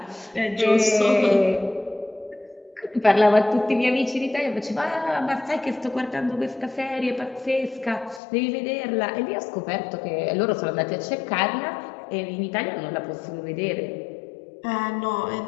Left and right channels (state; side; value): drops out; right; at 8.2 s